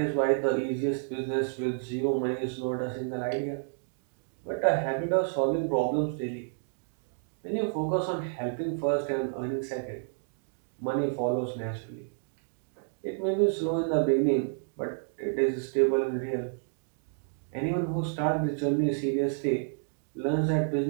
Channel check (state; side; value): silent; left; digital silence